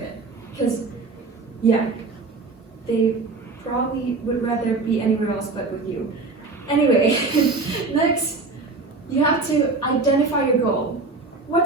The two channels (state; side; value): quieter; left; 3.8 dB